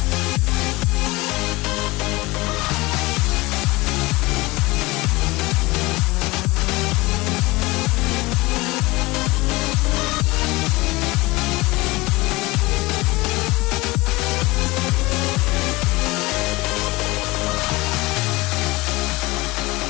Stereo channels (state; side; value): quieter; right; 22.1 dB